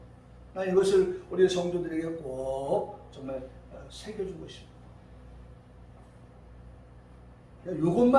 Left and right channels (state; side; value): identical; both; correlation 1.00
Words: 난 이것을 우리 성도들에게 꼭 정말 새겨주고 싶습니다.